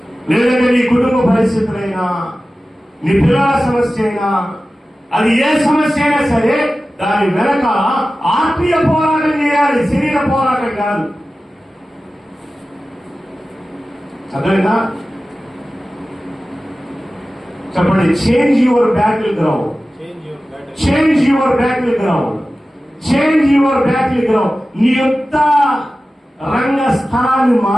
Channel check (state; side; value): normal; both; correlation 0.95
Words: లేదంటే నీ కుటుంబ పరిస్థితులైనా, నీ పిల్లల సమస్య అయినా, అది ఏ సమస్య అయినా సరే దాని వెనక ఆత్మీయ పోరాటం చేయాలి, శరీర పోరాటం కాదు. అర్థమైందా? చెప్పండి. Change your battle ground. Change your battle ground. Change your battle ground. నీ యుద్ధ రంగ స్థలాన్ని